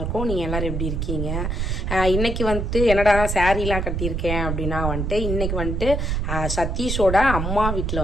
நீங்கள் எல்லோரும் எப்படி இருக்கீங்க? இன்றைக்கி வந்துட்டு என்னடா சாரீலாம் கட்டியிருக்கேன் அப்படின்னா வந்துட்டு இன்றைக்கி வந்துட்டு சதீஷோட அம்மா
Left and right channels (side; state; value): right; noise; rumble, 1 dB below the sound